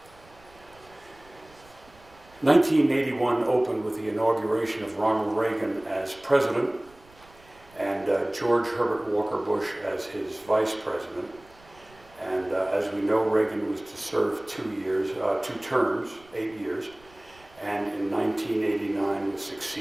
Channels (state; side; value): noise; right; rumble, 27 dB below the sound